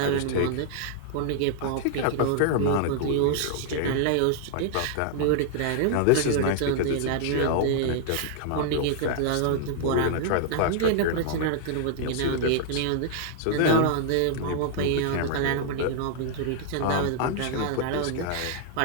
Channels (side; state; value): both; different; correlation -0.01